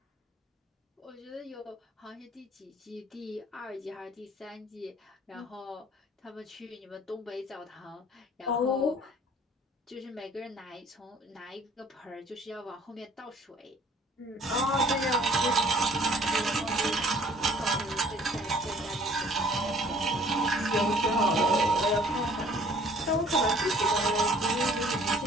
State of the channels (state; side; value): normal; both; correlation 0.55